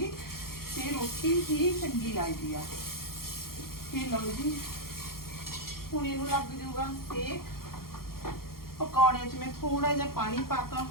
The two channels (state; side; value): late; right; 0.93 ms